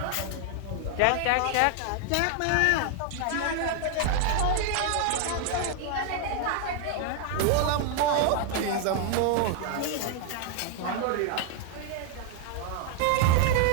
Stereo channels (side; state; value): both; different; correlation 0.00